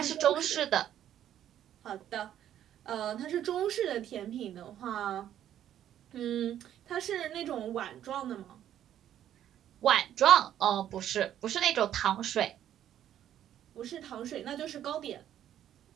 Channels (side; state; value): left; quieter; 11.0 dB